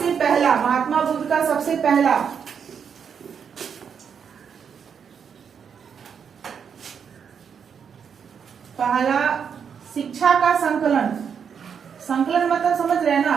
महात्मा बुद्ध का सबसे पहला शिक्षा का संकलन मतलब समझ रहे हैं ना,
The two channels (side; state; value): left; quieter; 7.1 dB